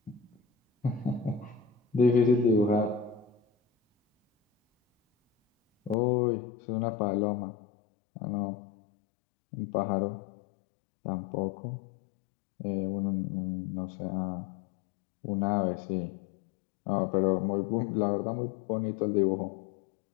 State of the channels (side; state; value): right; drops out; at 6.0 s